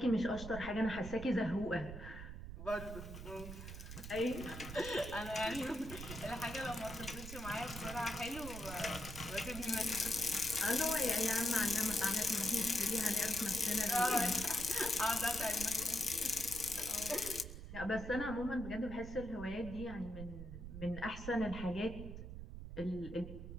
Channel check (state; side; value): noise; right; rumble, 10 dB below the sound